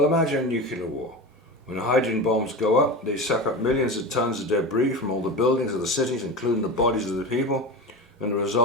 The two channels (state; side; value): normal; both; correlation 0.26